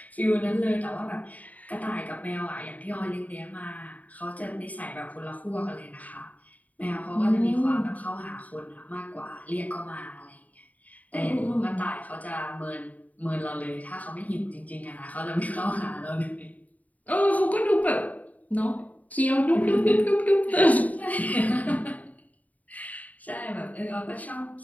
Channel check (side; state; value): right; late; 0.073 ms